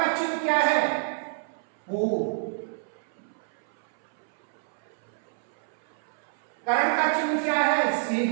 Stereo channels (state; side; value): silent; left; 59 dB below the other